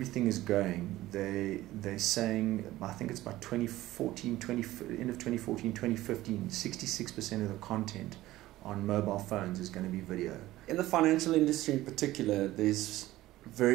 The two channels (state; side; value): quieter; left; 16.2 dB